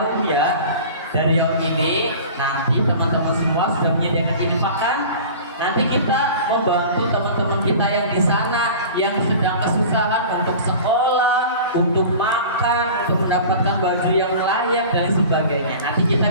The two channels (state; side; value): inverted; both; correlation -0.39